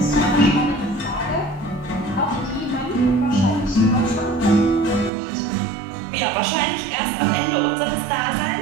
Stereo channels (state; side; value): drops out; left; at 5.1 s